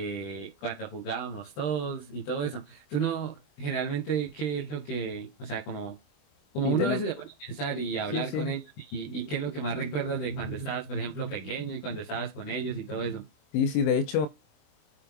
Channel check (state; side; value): late; right; 27 ms